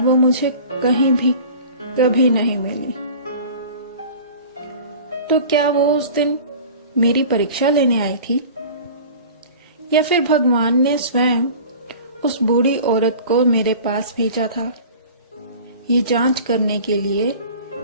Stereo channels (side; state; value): both; inverted; correlation -0.40